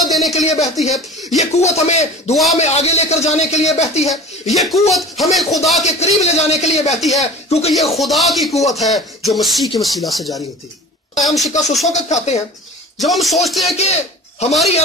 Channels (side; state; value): both; normal; correlation 0.38